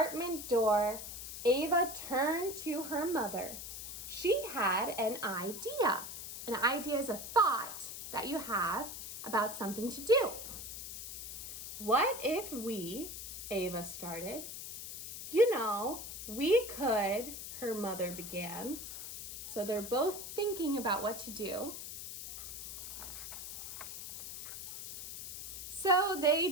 door, Ava turned to her mother. She had an idea. An idea is a thought that you have about something to do. What if we, Ava started, we could, her mother began. So they're both thinking about what to do. So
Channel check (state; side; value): noise; left; hiss, 9 dB below the sound